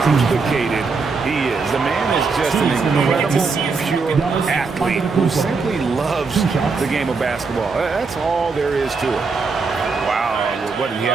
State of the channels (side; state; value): left; quieter; 4.6 dB